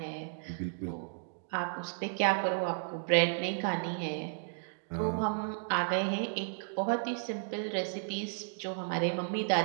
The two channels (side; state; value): left; silent; digital silence